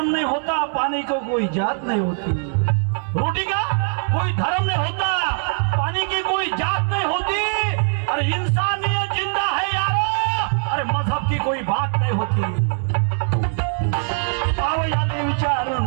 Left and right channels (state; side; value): silent; left; 65 dB below the other